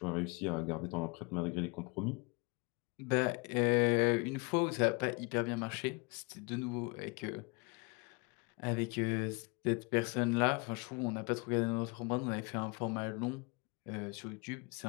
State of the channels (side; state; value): right; quieter; 30.3 dB